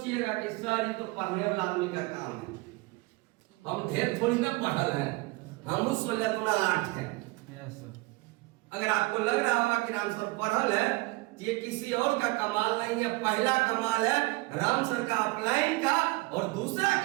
कि सर ये तो पढ़ने वाला आदमी का काम है। हम ढेर थोड़ी ना पढ़ल हैं, हम 16-8 हैं। अगर आपको लग रहा होगा कि राम सर पढ़ल है, तो ये किसी और का कमाल नहीं है। पहला कमाल है राम सर का अपलाइन का, और दूसरा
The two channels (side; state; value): left; quieter; 24.0 dB